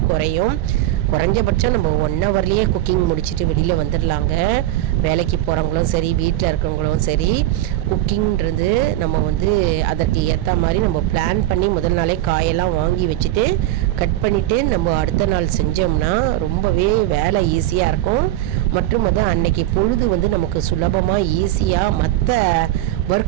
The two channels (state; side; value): quieter; left; 14.5 dB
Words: குறையும். குறைஞ்சபட்சம் நம்ம 1 ஹவர்லேயே குக்கிங் முடிச்சுட்டு வெளியில் வந்துடலாங்க. வேலைக்கு போகிறவங்களும் சரி, வீட்டில் இருக்கிறவங்களும் சரி, குக்கிங்கிறது நம்ம வந்து அதற்கு ஏற்ற மாதிரி நம்ம பிளான் பண்ணி முதல் நாளே காயெல்லாம் வாங்கி வச்சுட்டு கட் பண்ணிவிட்டு நம்ம அடுத்த நாள் செஞ்சோம்னா ரொம்பவே வேலை ஈஸியாக இருக்கும். மற்றும் வந்து அன்னைக்கு பொழுது வந்து நமக்கு சுலபமாக ஈஸியாக மற்ற